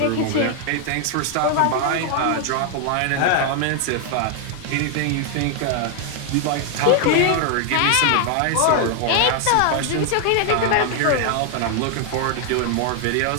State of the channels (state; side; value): different; both; correlation 0.00